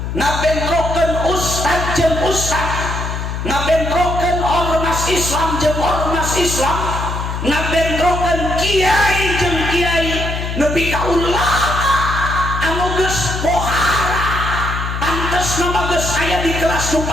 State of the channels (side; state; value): left; noise; hum, 4 dB below the sound